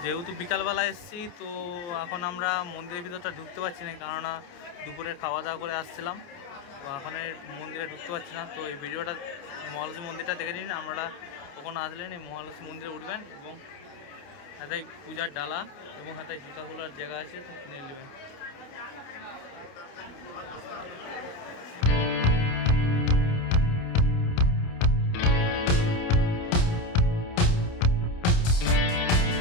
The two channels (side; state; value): right; late; 29 ms